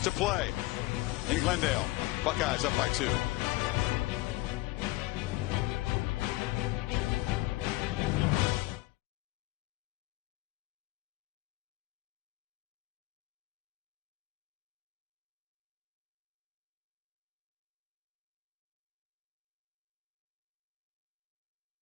play in Glendale. Buckeyes up by 2.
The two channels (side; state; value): right; quieter; 19.6 dB